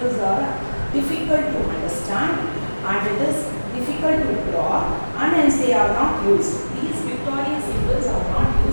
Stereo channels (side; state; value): both; inverted; correlation -1.00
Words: are difficult to understand and it is difficult to draw, and hence they are not used. These pictorial symbols are not